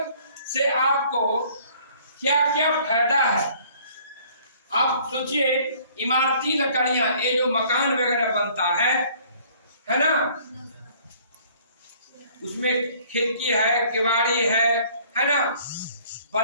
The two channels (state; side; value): inverted; both; correlation -0.57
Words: से आपको क्या क्या फायदा है। आप सोचिए, इमारती लकड़ियां, ये जो मकान वगैरह बनता है ना, उसमें खिड़की है, किवाड़ी है ना,